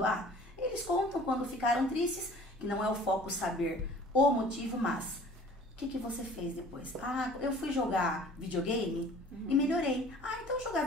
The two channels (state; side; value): normal; both; correlation 0.48